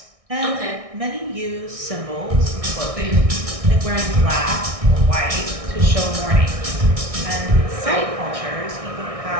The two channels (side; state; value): left; late; 1.6 ms